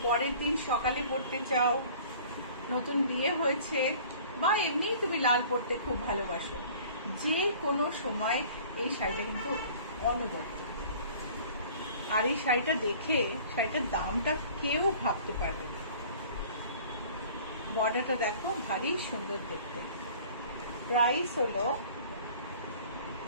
পরের দিন সকালে পড়তে চাও, নতুন বিয়ে হয়েছে, বা এমনি তুমি লাল পড়তে খুব ভালোবাসো, যে কোনো সময় এই শাড়িটা কিন্তু অনবদ্য। আর এই শাড়িটা দেখে শাড়িটার দামটা কেউ ভাবতে পারবে না। বর্ডারটা দেখো, ভারী সুন্দর দেখতে। প্রাইস হলো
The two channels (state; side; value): inverted; both; correlation -0.48